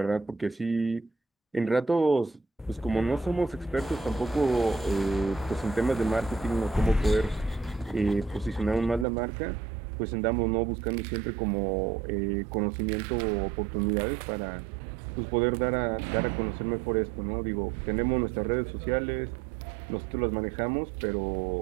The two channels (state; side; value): drops out; left; at 9.1 s